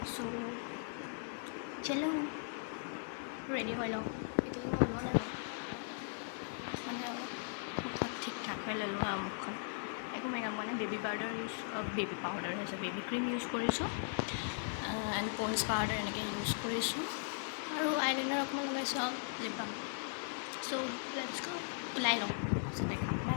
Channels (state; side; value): silent; right; digital silence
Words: চ' চলো ৰেডি হৈ লওক এতিয়ালৈকে ওলোৱা নাই মানে মুখত ঠিক ঠাক হৈ ল'লোঁ আৰু মুখখন একো মেকআপ মানে বেবী পাউডাৰ হৈছে বেবী ক্ৰীম ইউজ কৰিছোঁ এণ্ড পন্স পাউডাৰ এনেকৈ ইউজ কৰিছোঁ আৰু আইলাইনাৰ অকণমান লগাইছোঁ আৰু লিপ বাম চ' লেটছ গো ওলাই লওঁ তাৰপিছত দেখাম